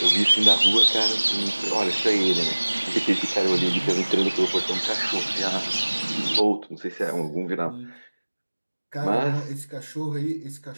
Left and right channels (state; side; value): inverted; both; correlation -1.00